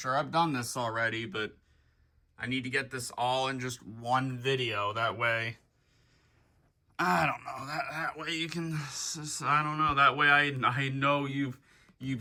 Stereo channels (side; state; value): both; identical; correlation 1.00